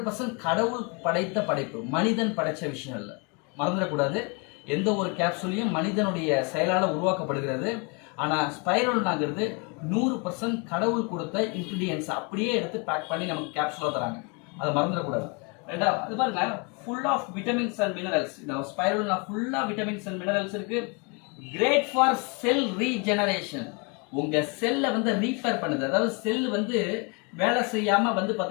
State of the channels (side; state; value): right; quieter; 32.4 dB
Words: கடவுள் படைத்த படைப்பு, மனிதன் படைச்ச விஷயம் இல்லை. மறந்துடக்கூடாது. எந்த ஒரு கேப்சூலையும் மனிதனுடைய செயலால் உருவாக்கப்படுகிறது. ஆனால் ஸ்பைரோலினாங்கிறது 100% கடவுள் கொடுத்த இன்கிரீடியன்ஸ் அப்படியே எடுத்து பேக் பண்ணி நமக்கு கேப்சூலாக தராங்க. அதை மறந்துடக்கூடாது. ரெண்டாவது அது பாருங்க, full of vitamins and minerals. இந்த ஸ்பைரோலினா ஃபுல்லாக விட்டமின்ஸ் அண்ட் மினரல்ஸ் இருக்கு. Great for cell regeneration. உங்க செல்லை வந்து ரீஃபேர் பண்ணுது. அதாவது செல் வந்து வேலை செய்யாம வந்து